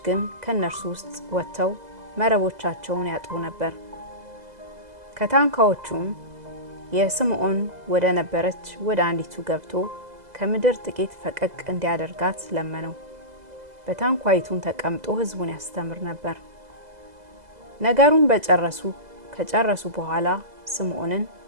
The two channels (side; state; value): left; late; 2.0 ms